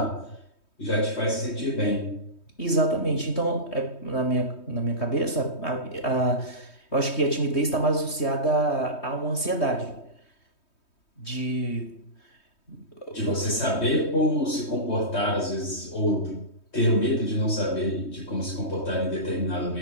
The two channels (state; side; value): late; right; 3.2 ms